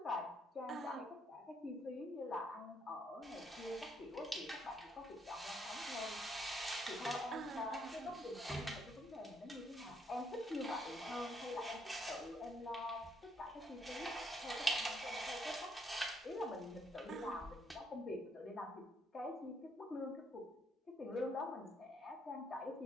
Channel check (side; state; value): both; normal; correlation 0.72